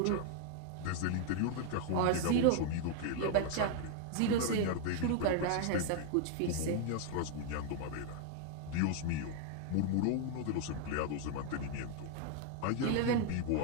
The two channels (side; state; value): both; different; correlation 0.00